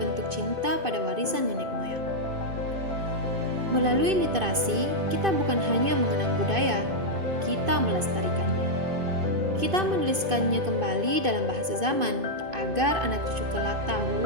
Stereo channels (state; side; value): late; left; 2.5 ms